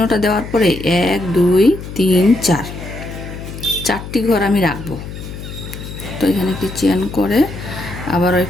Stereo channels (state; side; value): noise; left; hum, 11 dB below the sound